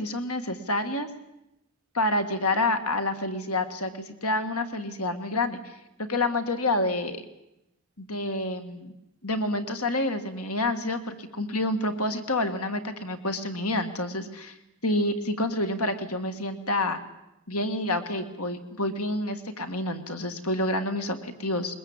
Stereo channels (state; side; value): normal; both; correlation -0.05